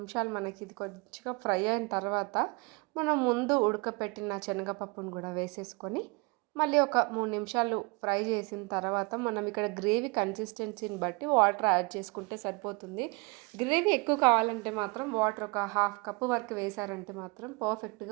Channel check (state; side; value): quieter; left; 28.4 dB